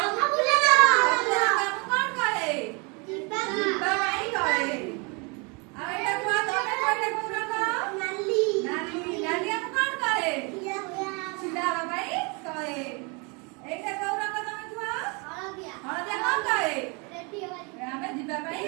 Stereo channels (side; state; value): left; quieter; 31.2 dB